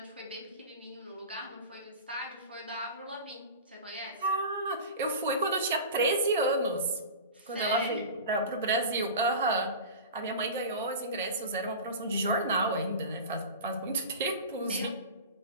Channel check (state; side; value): inverted; both; correlation -0.32